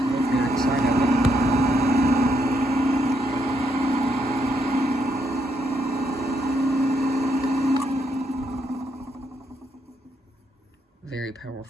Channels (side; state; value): both; normal; correlation 0.76